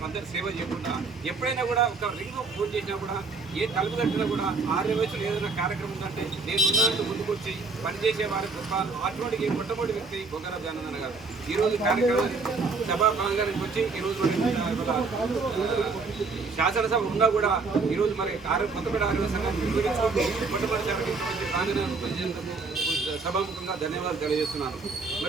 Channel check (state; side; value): quieter; left; 4.2 dB